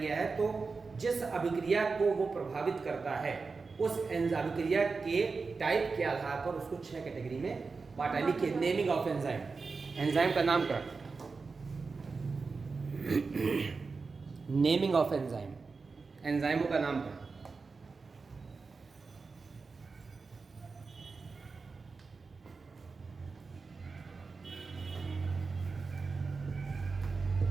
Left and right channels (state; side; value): quieter; left; 4.4 dB